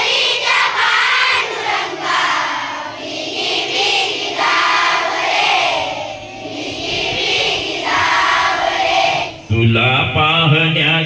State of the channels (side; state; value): both; identical; correlation 1.00